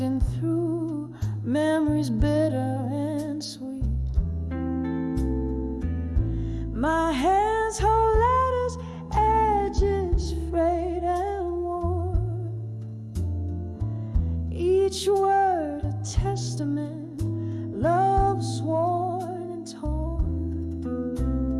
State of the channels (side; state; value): both; identical; correlation 1.00